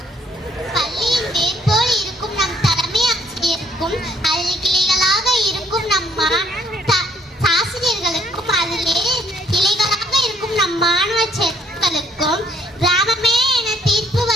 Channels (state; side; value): normal; both; correlation 0.65